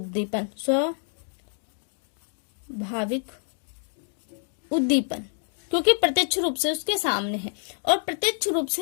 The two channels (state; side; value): silent; right; 56 dB below the other